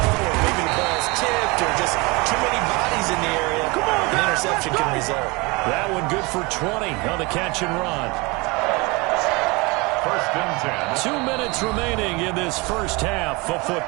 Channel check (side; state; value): left; quieter; 26.1 dB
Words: maybe the ball's tipped, or just too many bodies in the area, an interception can result. That one good for 20 on the catch and run. First and 10. 2 minutes remaining in this first half of